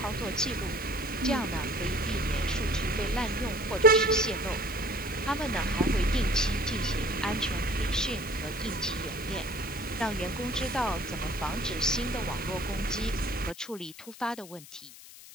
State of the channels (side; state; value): left; noise; hiss, 17 dB below the sound